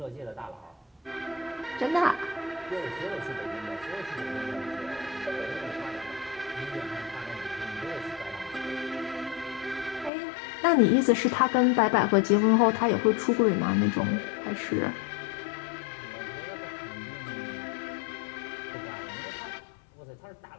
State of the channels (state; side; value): drops out; right; at 10.1 s